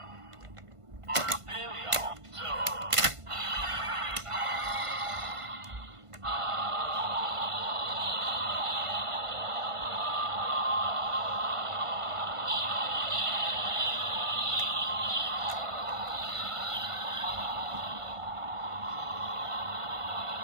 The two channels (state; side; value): late; left; 1.5 ms